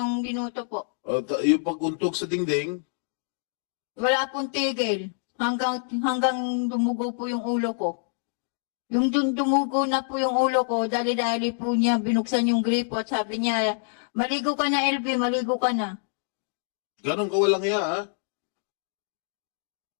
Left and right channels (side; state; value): right; silent; digital silence